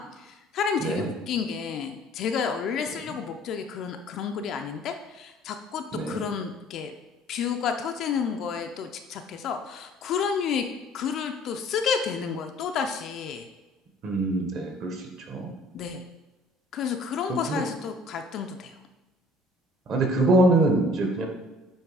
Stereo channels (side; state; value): both; normal; correlation 0.54